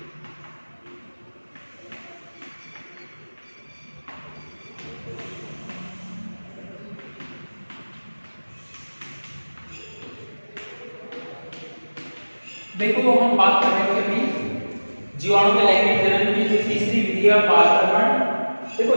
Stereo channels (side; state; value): both; inverted; correlation -1.00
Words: देखो, हम बात कर रहे थे अभी जीवाणु के लैंगिक जनन की जो तीसरी विधि है पारगमन। देखो,